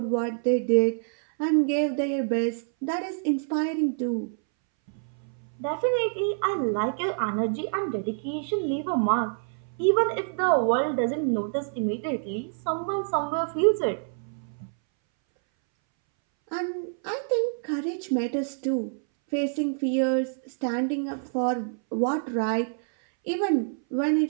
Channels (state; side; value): silent; left; 60 dB below the other